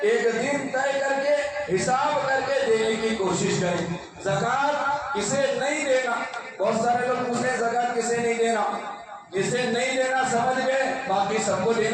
ایک دن طے کر کے حساب کر کے دینے کی کوشش کریں. زکات کسے نہیں دینا, بہت سارے لوگ پوچھتے ہیں زکات کسے نہیں دینا. جسے نہیں دینا سمجھ گئے, باقی سب کو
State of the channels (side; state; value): both; identical; correlation 1.00